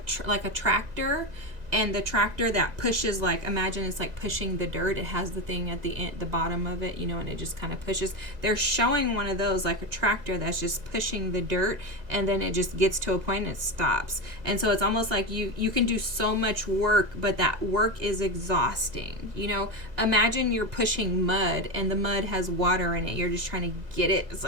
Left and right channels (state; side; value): late; left; 2.0 ms